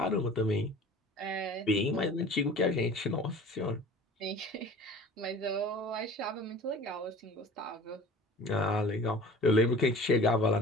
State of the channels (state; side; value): normal; both; correlation 0.43